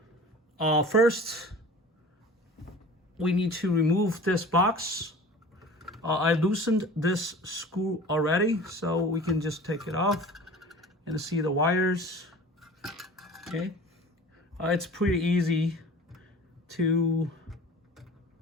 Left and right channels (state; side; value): normal; both; correlation 0.41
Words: First, we need to remove this box. I loosened this screw already, so we can just take it off and see the wires. Okay, it's pretty easy to